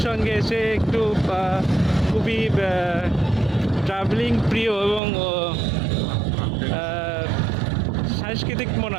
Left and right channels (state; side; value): drops out; left; at 5.0 s